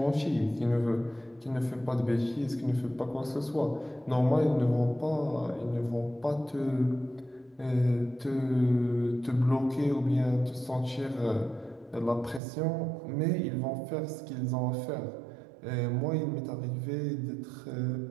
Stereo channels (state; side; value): drops out; left; at 12.4 s